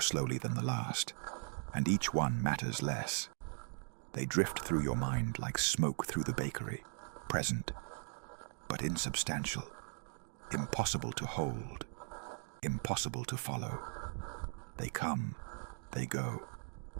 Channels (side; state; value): left; silent; 52 dB below the other